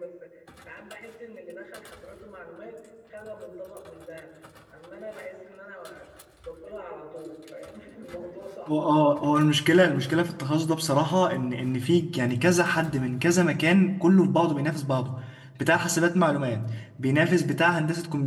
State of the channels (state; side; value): identical; both; correlation 1.00